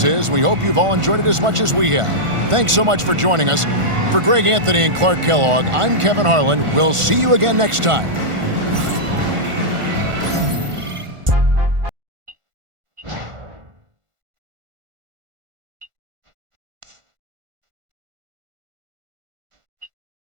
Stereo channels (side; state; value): left; late; 1.4 ms